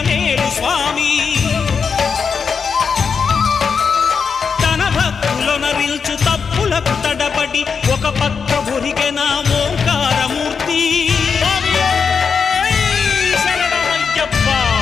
స్వామి తన భక్తులనరిల్చు తప్పులకు తడబడి ఒక పక్క ఒరిగెన ఓంకారమూర్తి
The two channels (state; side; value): quieter; right; 5.9 dB